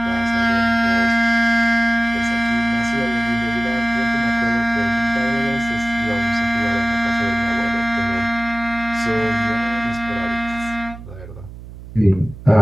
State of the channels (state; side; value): noise; right; hum, 15 dB below the sound